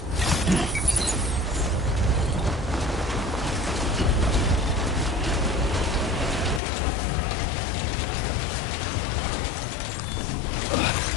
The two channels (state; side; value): drops out; right; at 6.6 s